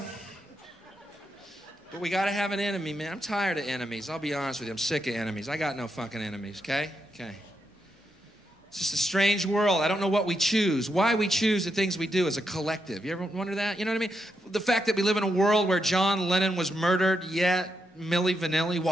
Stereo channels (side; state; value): both; normal; correlation 0.83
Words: But we gotta have an enemy, man. I'm tired of enemies. I'll be honest with you. I'm sick of enemies. I got no fucking enemies, okay? Okay. It's just a strange world. I don't know what we choose. Why we choose the things we do as a collective. You ever wonder that? You know what I mean? The fact that we live in a world where John Lennon was murdered, yet Milli Vanilli